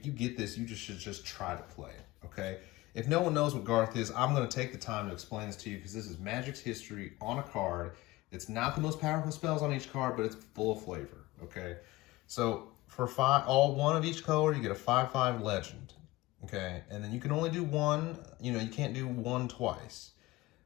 you get this, you should just try to play it, okay? If no one knows what Garth is, I'm going to take the time to explain this to you, because this is Magic's history on a card. It's not the most powerful spells on each card, but it's full of flavor, okay? So for all 1 of each color, you get a 5/5 legend, okay? And then you can only do 1, you can't do 1 twice.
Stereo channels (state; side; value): quieter; right; 19.3 dB